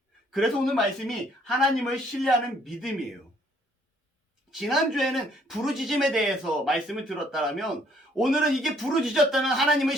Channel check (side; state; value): both; normal; correlation 0.64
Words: 그래서 오늘 말씀이 하나님을 신뢰하는 믿음이에요. 지난주에는 부르짖음에 대해서 말씀을 들었다면 오늘은 이게 부르짖었다면 하나님을